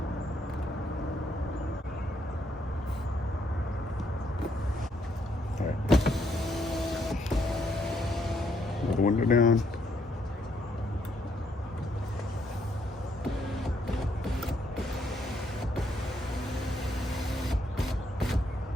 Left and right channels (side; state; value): both; normal; correlation 0.73